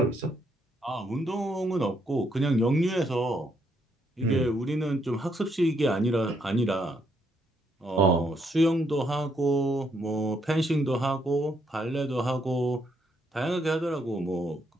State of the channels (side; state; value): both; normal; correlation 0.74